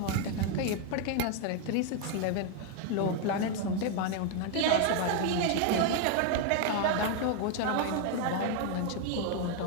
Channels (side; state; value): both; different; correlation 0.01